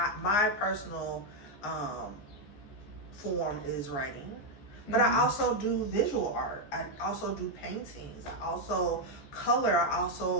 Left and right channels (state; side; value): late; right; 14 ms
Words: My personal form is writing, but I also do visual art. I also do paintings. I also color. I